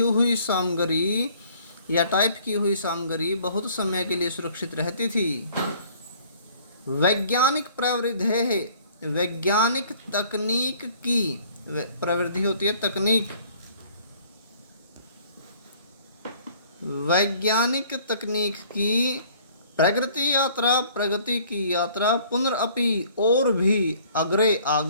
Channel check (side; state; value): both; inverted; correlation -0.56